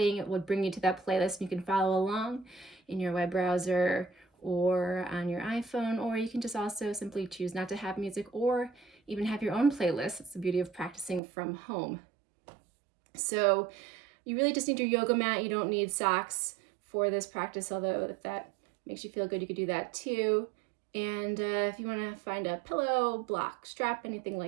it will bring you to that playlist. You can follow along in your web browser or on your iPhone, or you can just also simply choose not to have music or even have your own playlist. It's the beauty of practicing from home. So you really just need your yoga mat. You don't need socks for this practice, although if that makes you feel good, you could do that too. And if you want to find a pillow, block, strap, anything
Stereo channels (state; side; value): drops out; left; at 11.2 s